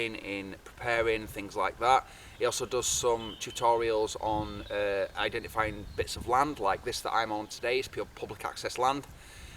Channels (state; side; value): identical; both; correlation 1.00